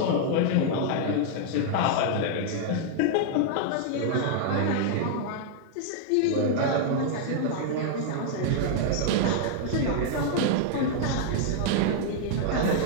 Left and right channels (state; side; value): different; both; correlation 0.00